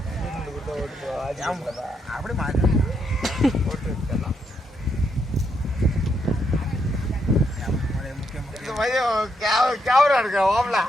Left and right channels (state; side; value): normal; both; correlation 0.78